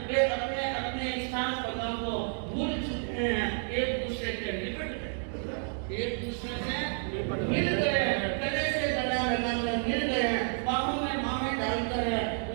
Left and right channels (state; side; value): silent; left; 56 dB below the other